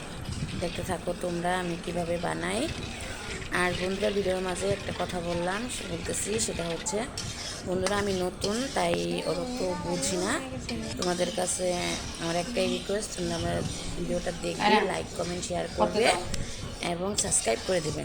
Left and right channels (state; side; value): identical; both; correlation 1.00